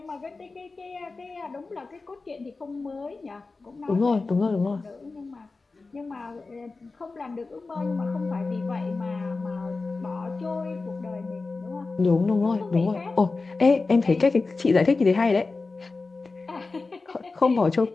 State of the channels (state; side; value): quieter; right; 3.8 dB